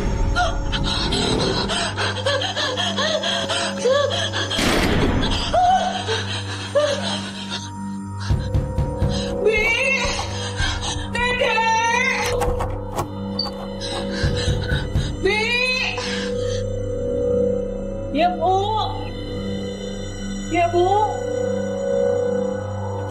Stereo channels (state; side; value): identical; both; correlation 1.00